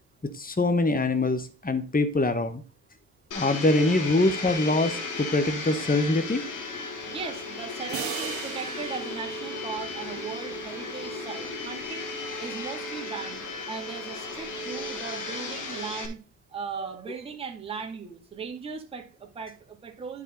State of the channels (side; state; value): both; normal; correlation 0.44